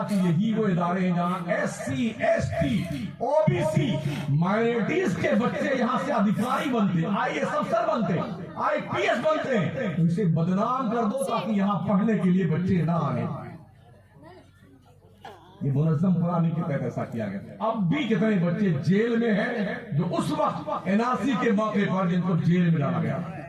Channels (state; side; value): identical; both; correlation 1.00